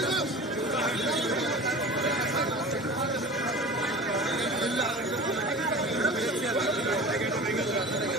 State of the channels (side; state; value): both; normal; correlation 0.36